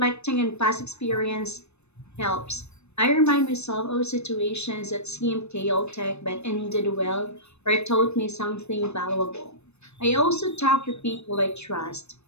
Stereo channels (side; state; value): right; late; 0.81 ms